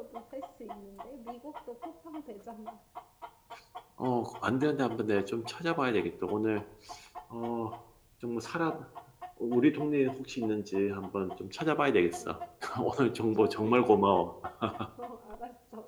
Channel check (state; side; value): identical; both; correlation 1.00